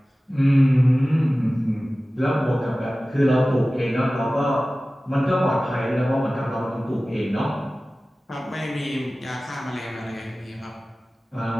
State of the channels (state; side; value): normal; both; correlation 0.97